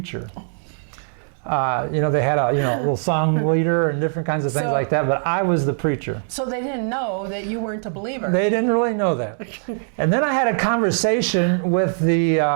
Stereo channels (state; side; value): silent; left; digital silence